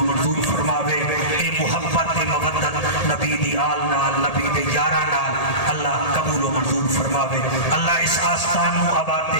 منظور فرماوے. اے محبت تے مودت نبی دی آل نال نبی دے یاراں نال اللہ قبول و منظور فرماوے. اللہ اس آستان نو آباد تے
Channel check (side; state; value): right; late; 1.8 ms